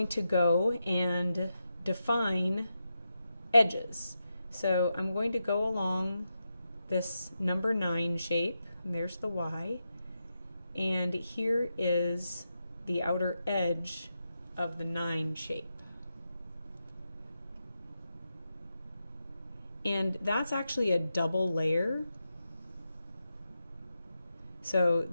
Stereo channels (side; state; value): both; inverted; correlation -0.87